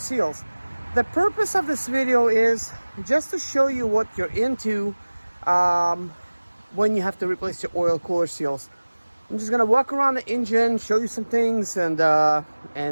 The purpose of this video is just to show you what you're into when you have to replace your oil cooler seals. I'm just gonna walk around the engine, show you some things, and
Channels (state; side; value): inverted; both; correlation -1.00